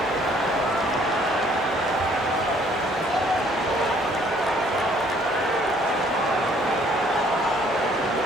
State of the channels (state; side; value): normal; both; correlation 0.61